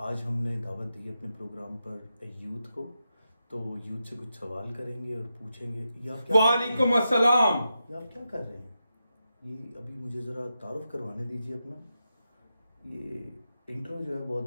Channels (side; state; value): both; inverted; correlation -0.88